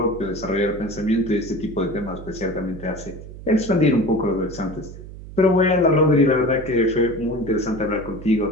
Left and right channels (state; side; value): noise; right; hum, 14 dB below the sound